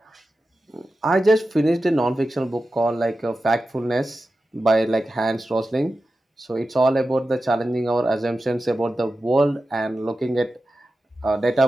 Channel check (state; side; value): normal; both; correlation 0.93